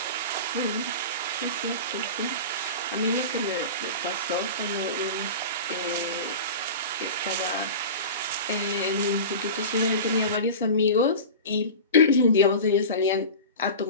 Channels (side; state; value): both; inverted; correlation -0.31